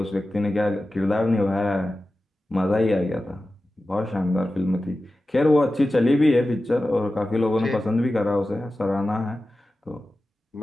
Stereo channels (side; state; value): both; normal; correlation 0.94